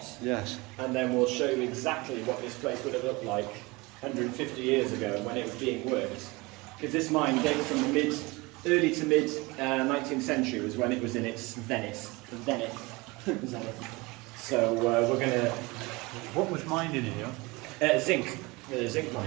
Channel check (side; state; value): left; quieter; 24.1 dB